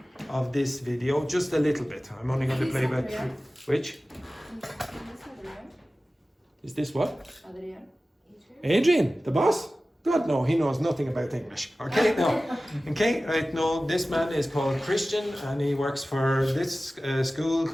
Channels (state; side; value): normal; both; correlation 0.96